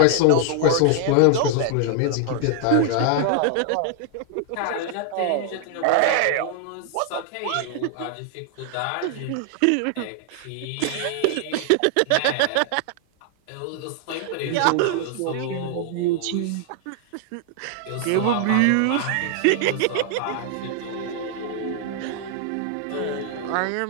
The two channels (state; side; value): different; both; correlation 0.00